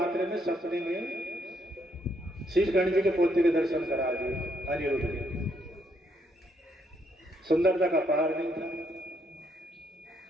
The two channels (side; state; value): both; normal; correlation 0.74